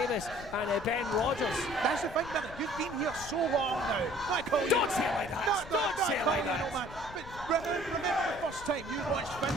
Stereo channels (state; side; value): noise; left; rumble, 15 dB below the sound